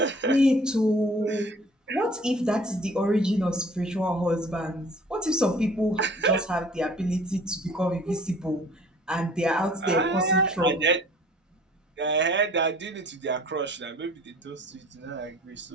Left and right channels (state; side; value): normal; both; correlation 0.51